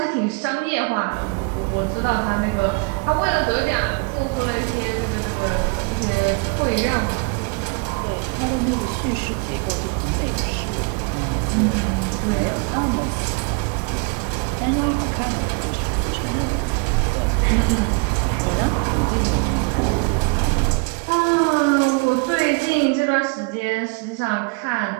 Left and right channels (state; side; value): quieter; left; 33.5 dB